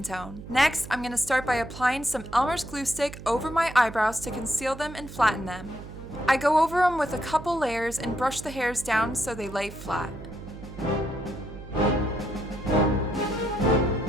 tone. Next, I'm going to start by applying some Elmer's glue stick over my eyebrows to conceal them and flatten them. I go over them with a couple layers and brush the hairs down so they lay flat.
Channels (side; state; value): right; noise; hum, 13 dB below the sound